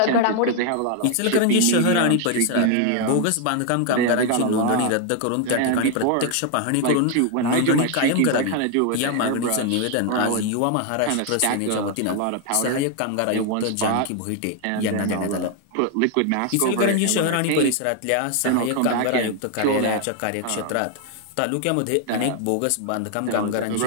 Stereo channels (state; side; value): different; both; correlation 0.00